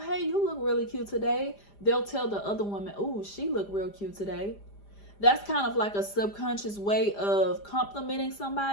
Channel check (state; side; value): late; right; 5.0 ms